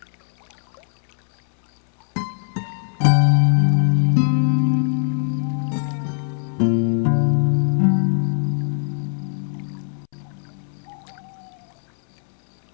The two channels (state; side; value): silent; right; 65 dB below the other